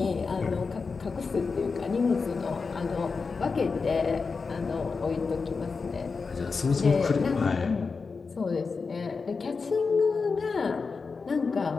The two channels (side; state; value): right; quieter; 4.7 dB